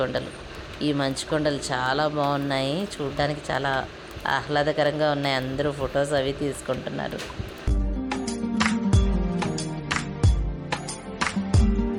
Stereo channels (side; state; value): both; identical; correlation 1.00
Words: ఈ మంచుకొండలు చాలా బాగున్నాయి, చూడడానికి చాలా ఆహ్లాదకరంగా ఉన్నాయి. అందరూ ఫొటోస్ అవి తీసుకుంటున్నారు.